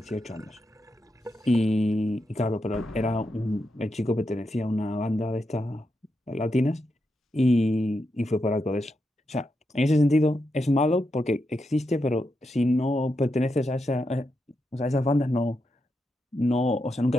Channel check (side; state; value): both; normal; correlation 0.85